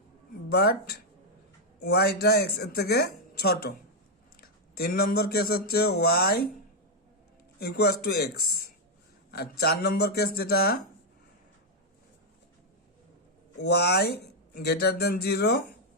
but ওয়াইটা এক্স এর থেকে ছোট। 3 নম্বর কেস হচ্ছে ওয়াই ইকুয়ালস টু এক্স। আর 4 নম্বর কেস যেটা Y greater than 0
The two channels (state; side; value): normal; both; correlation 0.00